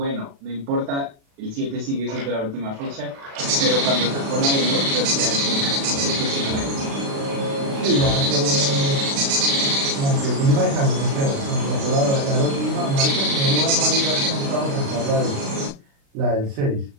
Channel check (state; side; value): late; left; 36 ms